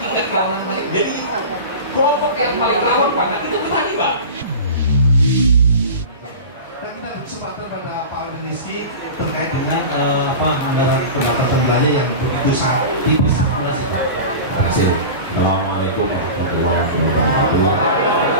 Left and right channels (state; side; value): inverted; both; correlation -0.31